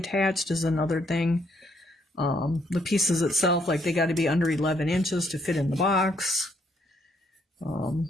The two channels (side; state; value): both; normal; correlation 0.71